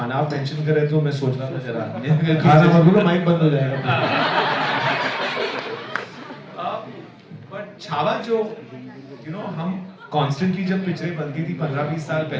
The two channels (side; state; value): both; identical; correlation 1.00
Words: आप मेंशन कर रहे थे तो मैं सोच रहा था जरा खाना मत बोलो, माइक बंद हो जाएगा. बट छावा जो हम कॉन्स्टेंटली जब पिक्चरें बनती थी 15-20 साल